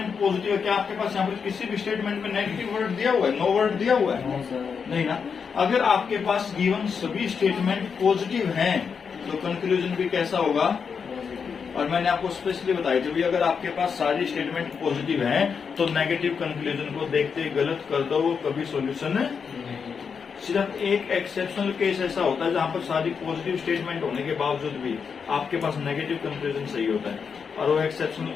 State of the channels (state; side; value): quieter; right; 6.2 dB